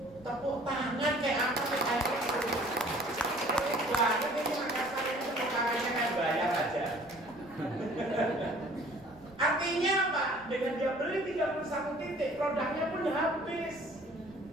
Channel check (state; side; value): noise; right; rumble, 24 dB below the sound